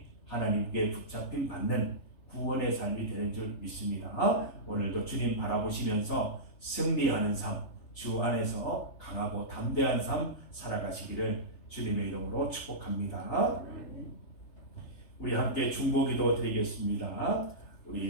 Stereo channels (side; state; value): right; late; 3.3 ms